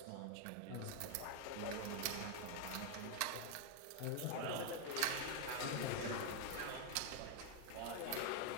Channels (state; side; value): different; both; correlation 0.00